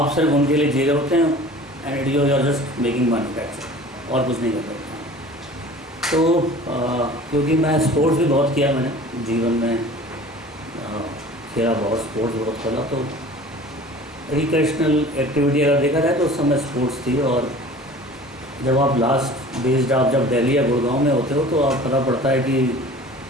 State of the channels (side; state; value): both; normal; correlation 0.43